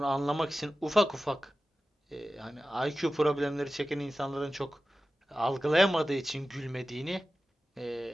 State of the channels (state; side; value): normal; both; correlation 0.95